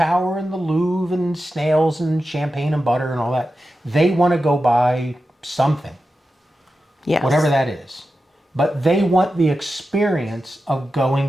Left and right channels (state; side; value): normal; both; correlation 0.91